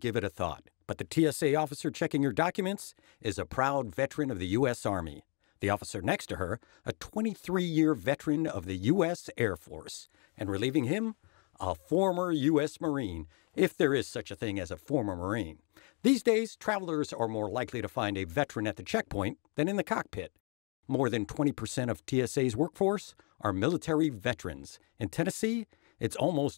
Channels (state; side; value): quieter; right; 36.3 dB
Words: it a thought. But the TSA officer checking your documents is a proud veteran of the U.S. Army. The officer next to her, a 23-year veteran of the U.S. Air Force. And relieving him, a former U.S. Marine, if there is such a thing as a former Marine. These days, travelers are more likely to find a veteran at the checkpoint than in the cockpit. More than 20% of TSA's workforce are military veterans. In Tennessee, it's